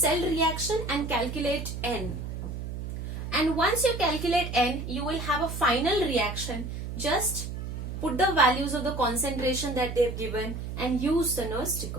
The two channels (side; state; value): right; noise; hum, 6 dB below the sound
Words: reaction and calculate N. And once you calculate N, you will have a final reaction. Just put the values of the concentration that they have given and use the Nernst